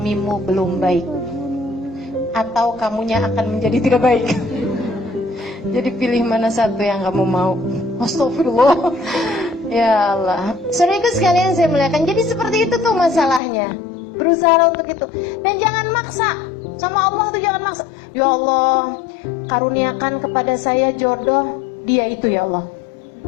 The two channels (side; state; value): right; drops out; at 13.4 s